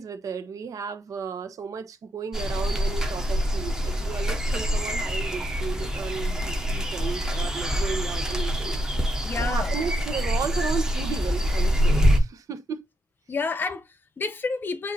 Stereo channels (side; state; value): both; normal; correlation 0.80